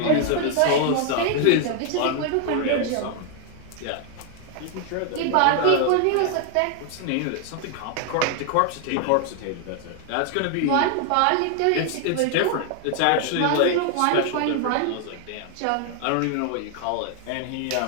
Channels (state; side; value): different; both; correlation 0.00